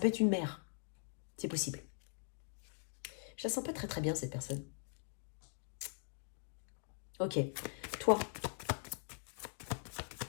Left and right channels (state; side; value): silent; right; digital silence